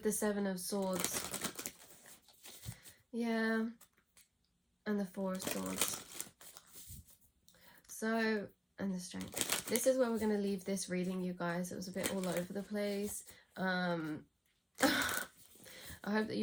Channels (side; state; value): both; identical; correlation 1.00